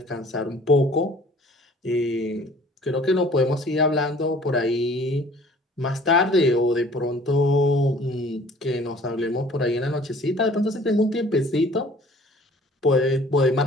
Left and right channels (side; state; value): both; normal; correlation 0.51